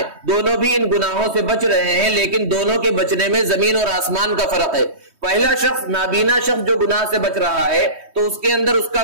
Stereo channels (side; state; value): left; late; 3.2 ms